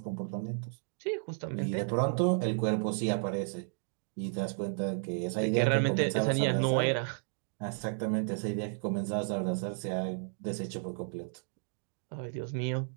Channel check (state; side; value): silent; left; digital silence